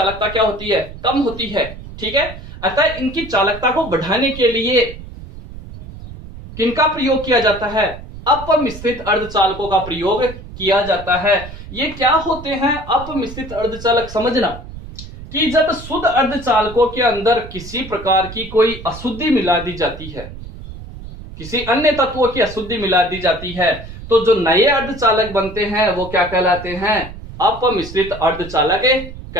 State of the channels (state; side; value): noise; right; rumble, 13 dB below the sound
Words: क्या होती है, कम होती है, ठीक है। अतः इनकी चालकता को बढ़ाने के लिए किनका प्रयोग किया जाता है, अपमिश्रित अर्धचालकों का प्रयोग किया जाता है। ये क्या होते हैं अपमिश्रित अर्धचालक, समझना कि जब शुद्ध अर्धचालकों के अंदर किसी प्रकार की कोई अशुद्धि मिला दी जाती है, किसी अन्य तत्वों की अशुद्धि मिला दी जाती है, तो जो नए अर्धचालक बनते हैं वो क्या कहलाते हैं, अपमिश्रित अर्धचालक